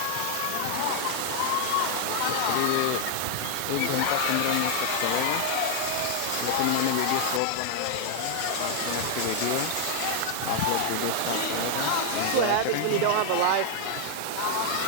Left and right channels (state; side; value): different; both; correlation 0.00